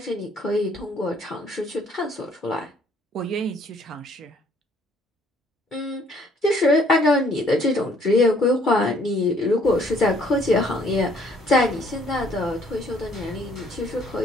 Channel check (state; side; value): normal; both; correlation 0.62